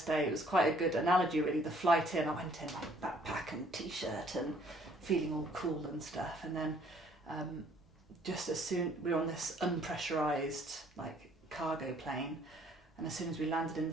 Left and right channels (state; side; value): normal; both; correlation 0.61